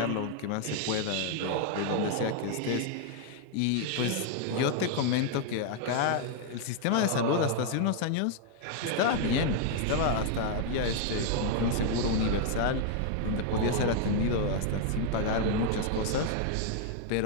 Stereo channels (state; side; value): different; both; correlation 0.00